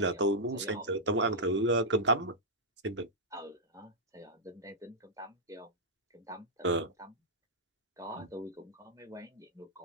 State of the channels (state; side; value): normal; both; correlation -0.09